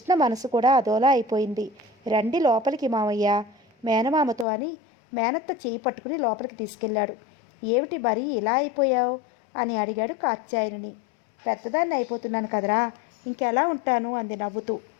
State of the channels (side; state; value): right; drops out; at 4.5 s